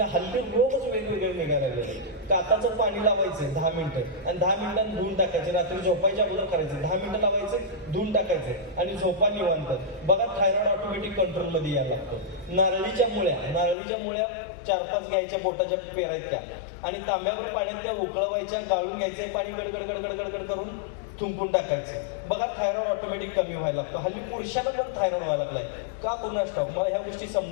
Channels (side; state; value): right; drops out; at 13.8 s